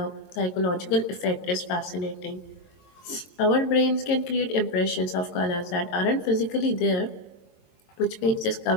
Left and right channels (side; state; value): right; late; 22 ms